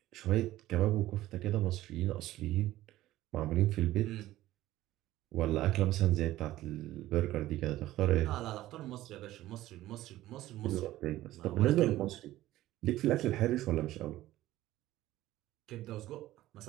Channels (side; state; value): left; quieter; 15.5 dB